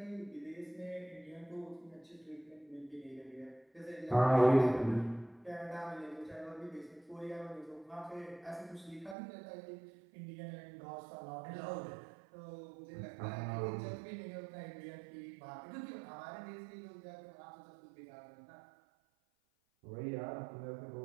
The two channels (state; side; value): drops out; left; at 9.2 s